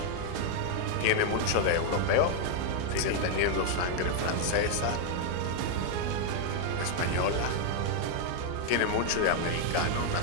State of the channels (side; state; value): both; different; correlation 0.00